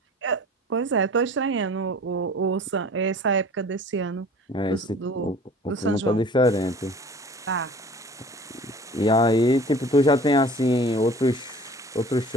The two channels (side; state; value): both; normal; correlation 0.45